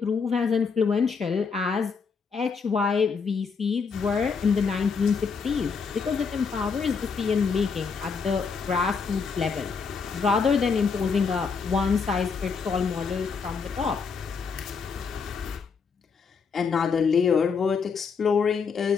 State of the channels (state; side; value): quieter; right; 5.5 dB